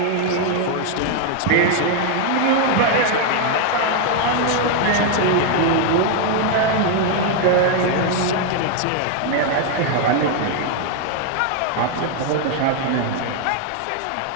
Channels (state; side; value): different; both; correlation 0.01